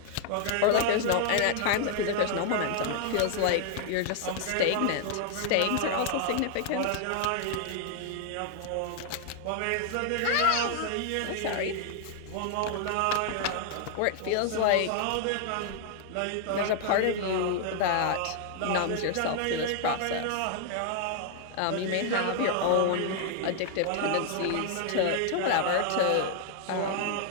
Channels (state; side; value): different; both; correlation 0.00